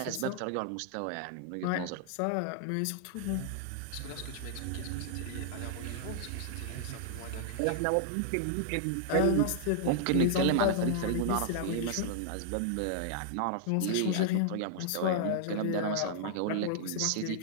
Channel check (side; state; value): both; different; correlation -0.01